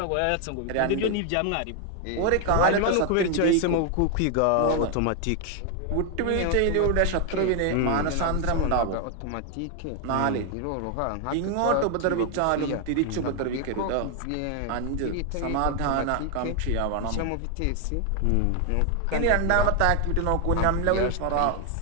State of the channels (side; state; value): both; different; correlation 0.00